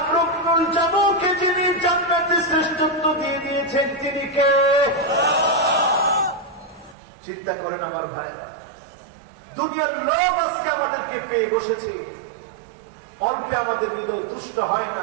ইবনুল জামূহকে যিনি জান্নাতে শ্রেষ্ঠত্ব দিয়ে দিয়েছেন তিনি কে? চিন্তা করেন আমার ভাইরা, দুনিয়ার লোভ আজকে আমাদেরকে পেয়ে বসেছে, অল্পে আমাদের হৃদয় তুষ্ট হয়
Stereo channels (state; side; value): drops out; left; at 7.0 s